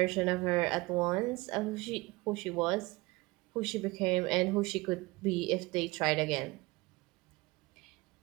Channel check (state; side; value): quieter; left; 22.4 dB